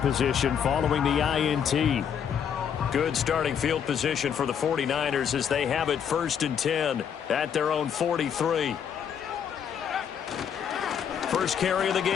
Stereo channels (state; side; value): quieter; right; 8.0 dB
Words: following the INT. Good starting field position for the 49ers as they have it 1st and 10 at their own 43. First carry of the